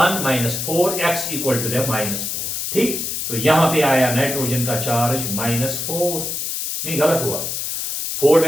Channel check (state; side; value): noise; left; hiss, 3 dB below the sound